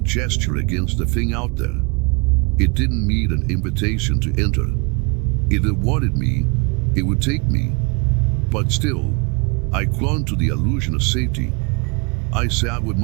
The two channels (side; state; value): left; quieter; 30.4 dB